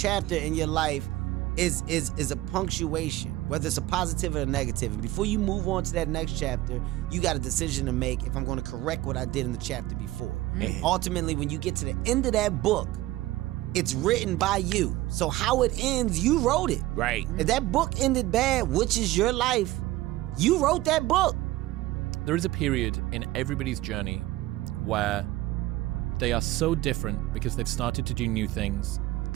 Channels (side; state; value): left; quieter; 17.0 dB